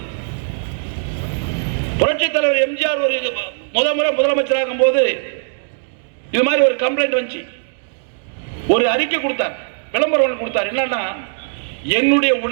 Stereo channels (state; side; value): silent; left; digital silence